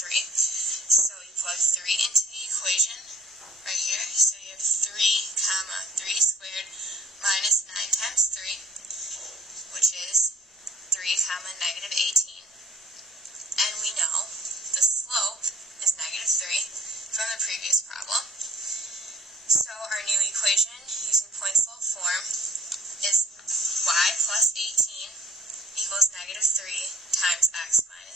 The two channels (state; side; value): normal; both; correlation 0.59